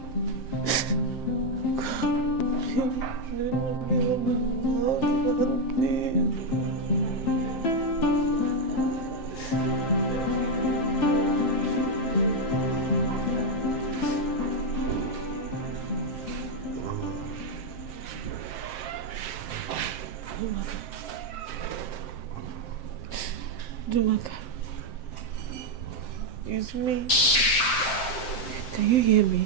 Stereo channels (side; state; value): right; late; 7.6 ms